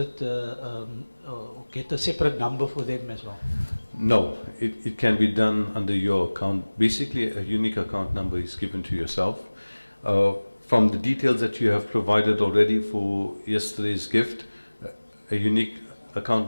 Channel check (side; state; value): both; inverted; correlation -1.00